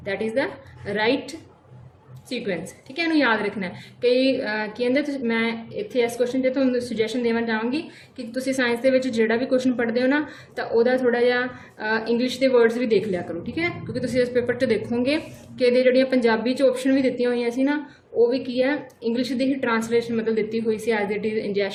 That is the right sequence. ठीक है, इन्हू याद रखना है। कई कहते मैं इतने इस क्वेश्चन से तुहानूं सुजैशन देना चाहूँगी कि तुसीं साइंस के जोड़ा भी क्वेश्चन पढ़ते हो ना तो वह थोड़ा जिहा इंग्लिश के वर्ड्स भी देख लिया करो। ठीक है, क्योंकि तुसीं इस पेपर 'च देखोगे कि ये जोड़ियाँ पंजाबी ऑप्शन भी दित्तियां हुई सी ना, वो भी की है इंग्लिश की ही ट्रांसलेशन मतलब दी हुई सी as it is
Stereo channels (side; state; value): both; identical; correlation 1.00